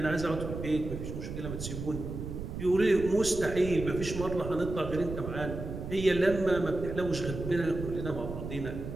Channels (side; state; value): right; noise; rumble, 7 dB below the sound